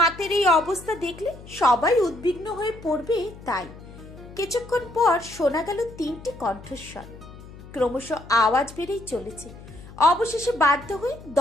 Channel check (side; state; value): left; noise; hum, 17 dB below the sound